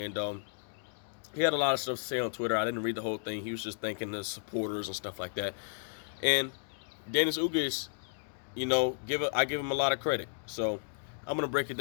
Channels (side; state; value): right; silent; digital silence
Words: he had a lot of stuff to say on Twitter. I didn't read the whole thing. He was just thanking the supporters and stuff like that. And Dennis Ugas, I give him a lot of credit. So I'm gonna break it